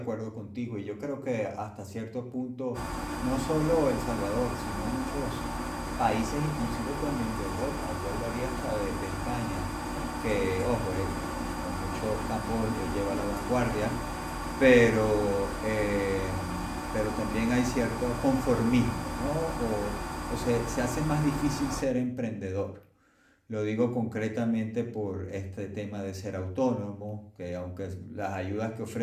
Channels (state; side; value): identical; both; correlation 1.00